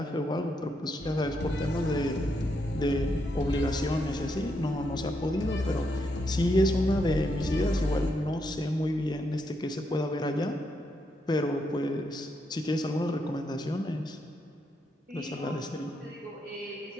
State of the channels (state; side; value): normal; both; correlation 0.80